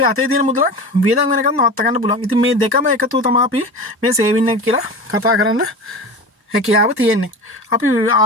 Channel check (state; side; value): normal; both; correlation 0.30